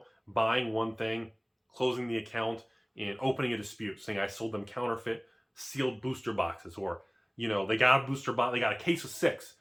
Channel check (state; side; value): identical; both; correlation 1.00